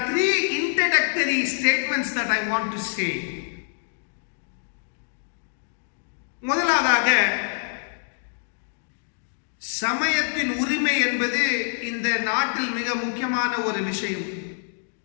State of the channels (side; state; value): right; silent; digital silence